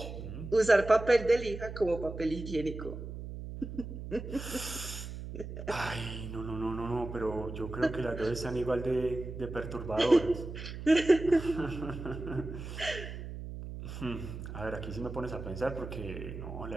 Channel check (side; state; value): right; noise; hum, 9 dB below the sound